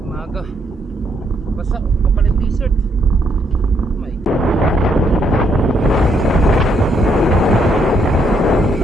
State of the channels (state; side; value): normal; both; correlation 0.73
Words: Basa, kapalit t-shirt. My